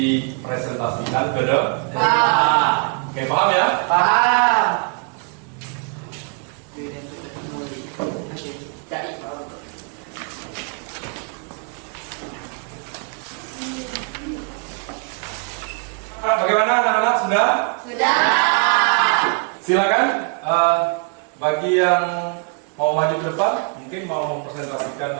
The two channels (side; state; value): left; quieter; 37.1 dB